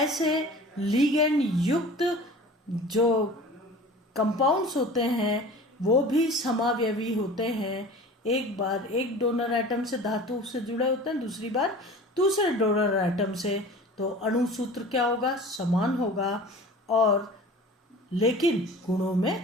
लिगेंड युक्त जो कंपाउंड्स होते हैं वो भी समावयवी होते हैं। एक बार एक डोनर एटम से धातु से जुड़े होते हैं, दूसरी बार दूसरे डोनर एटम से, तो अणु सूत्र क्या होगा? समान होगा और लेकिन गुणों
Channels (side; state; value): both; normal; correlation 0.40